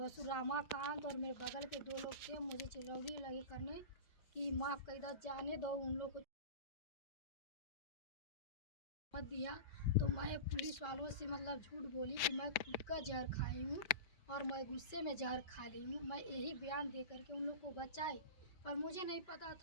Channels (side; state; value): right; late; 5.2 ms